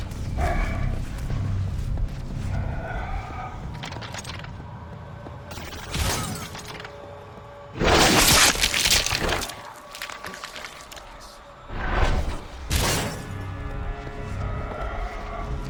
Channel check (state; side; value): identical; both; correlation 1.00